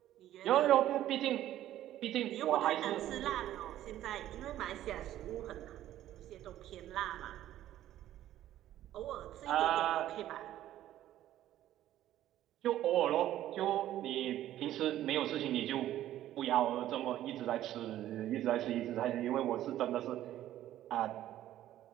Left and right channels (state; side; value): quieter; left; 13.0 dB